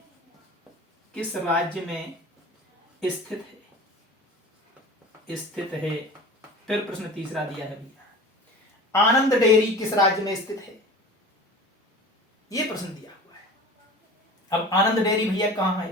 स्थित है। फिर प्रश्न तीसरा दिया है भैया, आनंद डेयरी किस राज्य में स्थित है। ये प्रश्न दिया हुआ है। अब आनंद डेयरी भैया कहाँ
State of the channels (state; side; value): normal; both; correlation 0.38